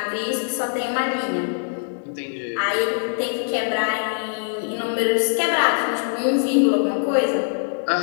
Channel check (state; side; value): silent; right; digital silence